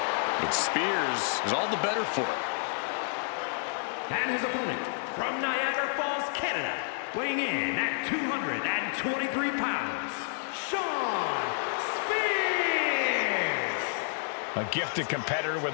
But Spears is all the better for it. And his opponent from Niagara Falls, Canada, weighing in at 223 pounds, Shawn Spears! A gifted competitor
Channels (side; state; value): right; silent; digital silence